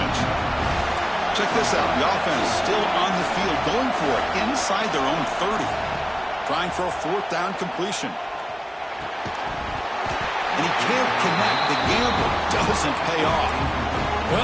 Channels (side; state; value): both; identical; correlation 1.00